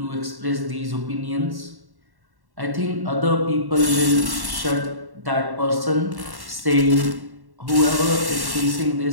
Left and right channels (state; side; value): late; left; 1.1 ms